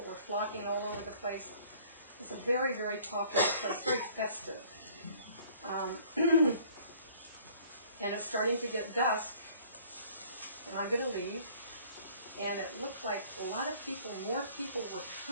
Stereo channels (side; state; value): both; inverted; correlation -0.54